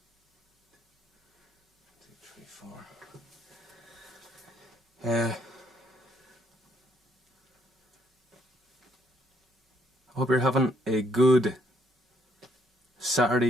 2, 3, 4. I hope you're having a good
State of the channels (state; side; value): normal; both; correlation 0.67